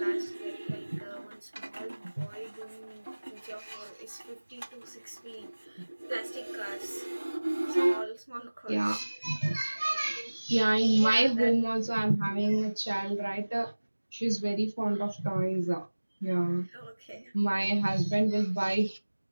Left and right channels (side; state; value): both; inverted; correlation -1.00